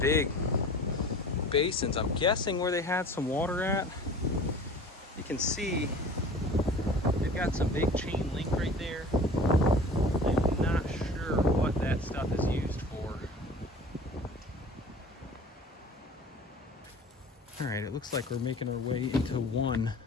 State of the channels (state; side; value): normal; both; correlation 0.42